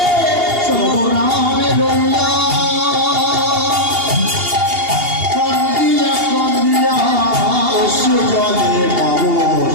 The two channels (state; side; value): late; left; 2.8 ms